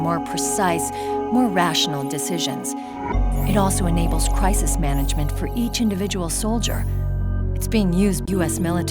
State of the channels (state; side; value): identical; both; correlation 1.00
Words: precise, more rational decisions. It also enables crisis management for each individual soldier. It's being used by US